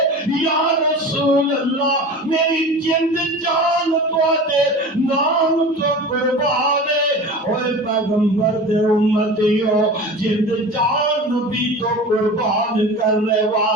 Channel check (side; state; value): both; normal; correlation 0.34